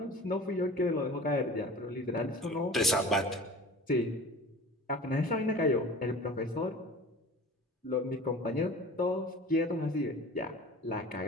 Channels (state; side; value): normal; both; correlation 0.39